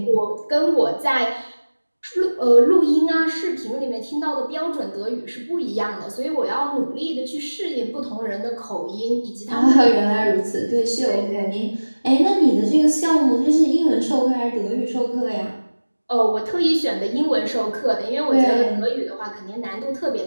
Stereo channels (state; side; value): inverted; both; correlation -1.00